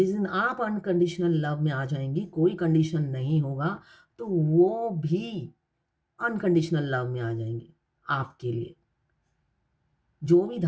दिन आप अनकंडीशनल लव में आ जाएंगी, कोई कंडीशन नहीं होगा, तो वो भी अनकंडीशनल लव में आ जाएंगे आपके लिए। जो भी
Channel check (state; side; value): identical; both; correlation 1.00